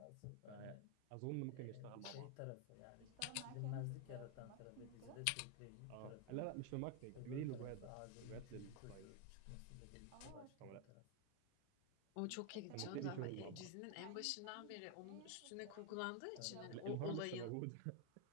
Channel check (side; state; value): both; different; correlation 0.01